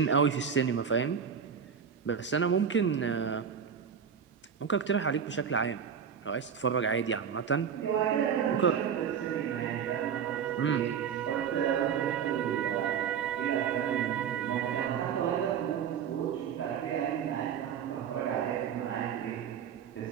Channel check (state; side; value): quieter; left; 7.6 dB